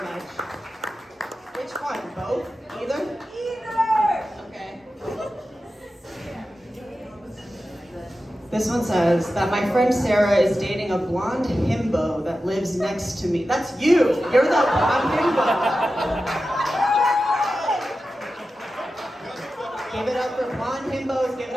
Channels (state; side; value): normal; both; correlation 0.93